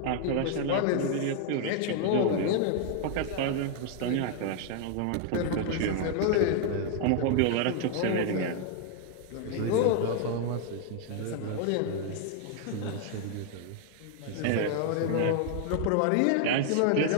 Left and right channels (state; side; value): different; both; correlation 0.00